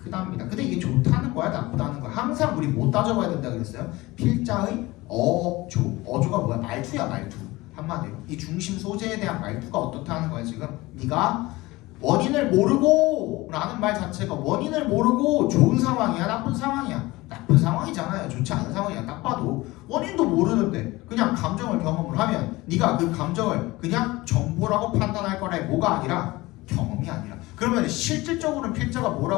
크답니다. 근데 이게 좋다는 거야, 나쁘다는 거야? 항상 우리 못 따져봐야 된다 그랬어요. 필자의 어조가 뭐야? 말투야, 말투. 한마디로 이 중심 소재에 대한 말투가 어떻다는 거야 지금. 네가 원인을 모르고 라는 말 자체가 원인을 모르고 좋은 상황이야, 나쁜 상황이야? 나쁜 상황이잖아요. 좋지 않은 상황이야. 딱 봐도 원인도 모르는데 그냥 감정을 경험을 하면 네가 그 감정을 그냥 정보라고 판단할 거라. 뭐가 아니라 경험이 아니라. 그러면 실질적으로는 필자가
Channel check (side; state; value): right; quieter; 20.4 dB